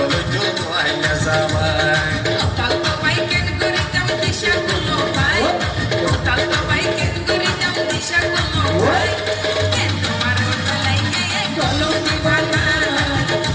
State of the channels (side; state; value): both; identical; correlation 1.00